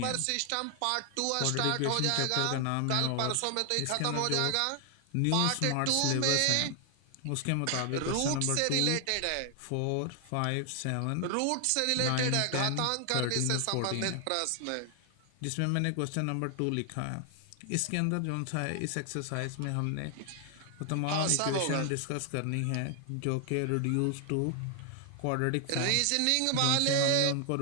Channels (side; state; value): both; different; correlation 0.00